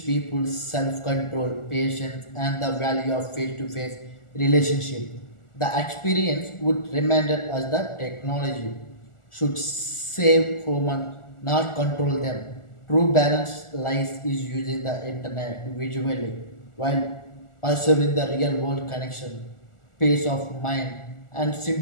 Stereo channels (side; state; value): right; late; 1.4 ms